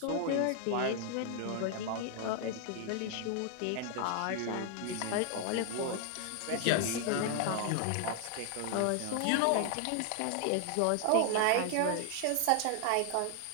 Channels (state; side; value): different; both; correlation 0.00